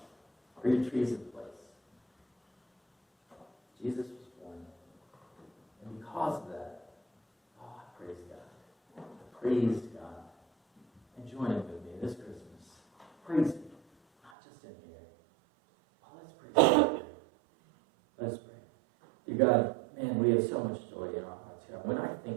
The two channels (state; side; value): drops out; left; at 14.3 s